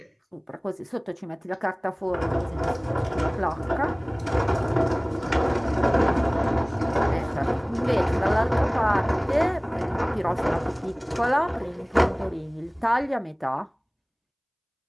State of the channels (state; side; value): identical; both; correlation 1.00